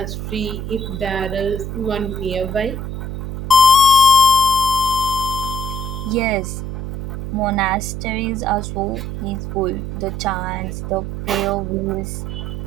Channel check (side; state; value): right; noise; hum, 6 dB below the sound